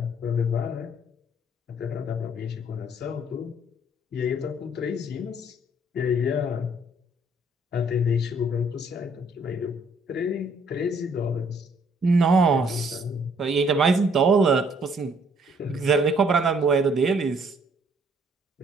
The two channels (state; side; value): normal; both; correlation 0.64